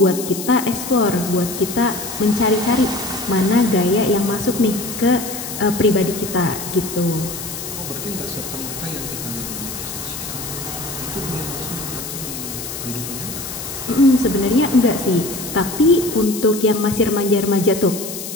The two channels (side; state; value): left; noise; hiss, 8 dB below the sound